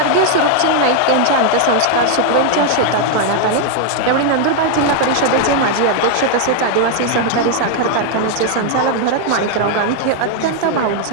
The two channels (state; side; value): different; both; correlation 0.00